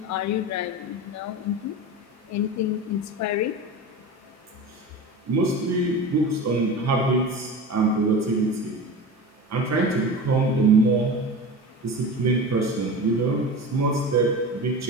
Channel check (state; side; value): normal; both; correlation 0.30